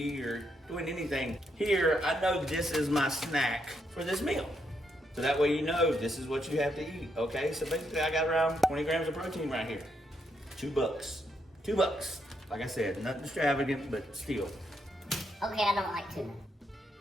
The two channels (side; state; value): both; normal; correlation 0.78